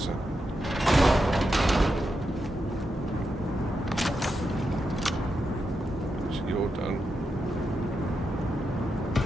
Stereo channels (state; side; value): normal; both; correlation 0.86